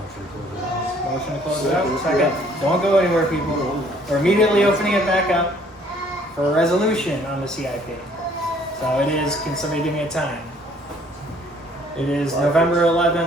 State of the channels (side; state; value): both; normal; correlation 0.60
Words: Motion to close it out, second. Don't go anywhere, people. We're immediately opening it back up for a resolution on the CIP. So it is, can somebody give me a time? It is November